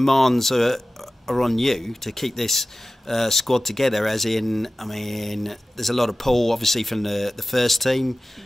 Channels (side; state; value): both; normal; correlation 0.96